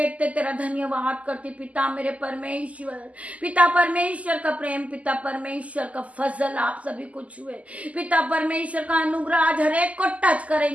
तेरा धन्यवाद करती पिता मेरे परमेश्वर। पिता परमेश्वर का प्रेम, पिता परमेश्वर का फजल आप सभी को छुए। पिता परमेश्वर का अनुग्रह आज हर एक को टच करें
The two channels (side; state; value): left; late; 0.070 ms